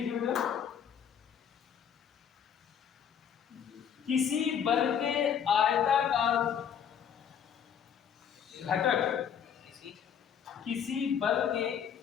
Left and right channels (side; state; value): right; quieter; 8.1 dB